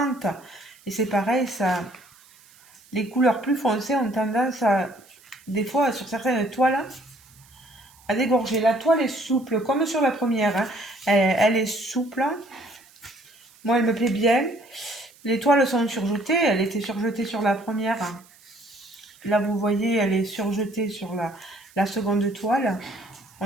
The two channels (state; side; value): noise; right; hiss, 27 dB below the sound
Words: Et c'est pareil, ça, les couleurs plus foncées ont tendance à, des fois, sur certaines toiles, à dégorger. La toile est souple, comme sur la première. Hein. Elle est souple. Moi, elle me plaît bien. Les toiles sont surjetées. Elle était surjetée sur la première. Là, vous voyez, elle est surjetée sur la seconde toile.